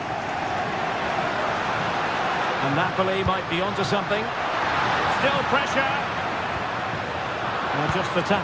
And Napoli might be onto something. Still pressure. Well, just the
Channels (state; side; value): identical; both; correlation 1.00